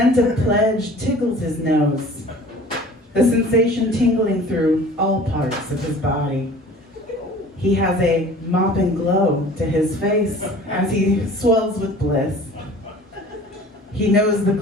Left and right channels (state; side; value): normal; both; correlation 0.45